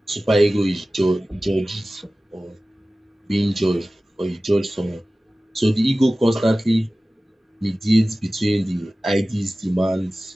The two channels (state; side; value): normal; both; correlation 0.97